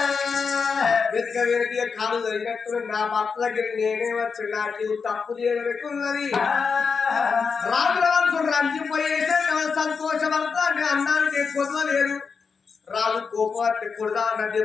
వెతిక వెతిక కాలు జరిగినట్టు నా భర్త దగ్గర నేనే వచ్చి నాకు తప్పు చేయబెట్టున్నది. రాజుల వరకు రంజిపోయేసే సంతోషపడతా అన్నానికి ఎక్కువ లేదు. రాజు కోపాన్ని కొడదా అన్న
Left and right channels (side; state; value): right; quieter; 5.5 dB